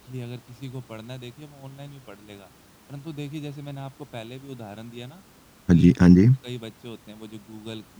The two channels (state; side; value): identical; both; correlation 1.00